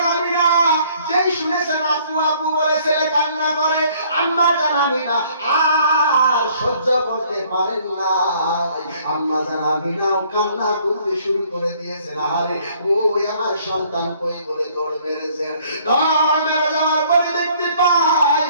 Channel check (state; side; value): inverted; both; correlation -0.60